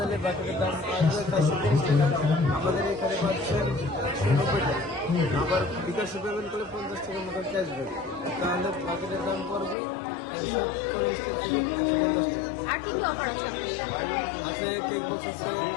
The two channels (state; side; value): drops out; right; at 9.8 s